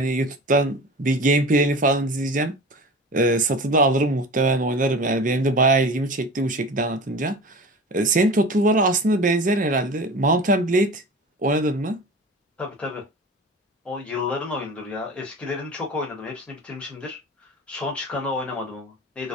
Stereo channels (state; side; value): normal; both; correlation 0.35